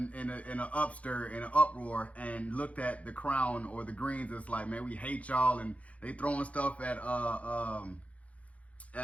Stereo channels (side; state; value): right; late; 0.066 ms